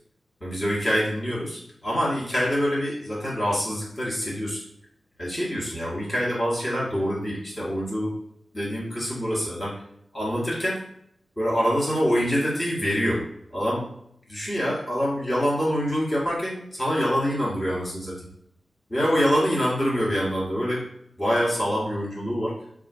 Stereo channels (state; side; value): normal; both; correlation 0.93